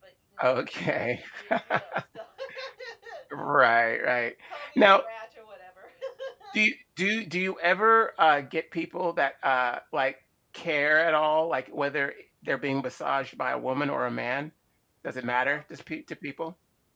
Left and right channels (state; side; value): identical; both; correlation 1.00